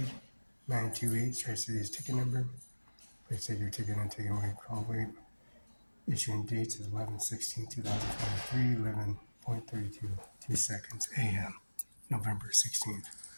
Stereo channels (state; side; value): inverted; both; correlation -1.00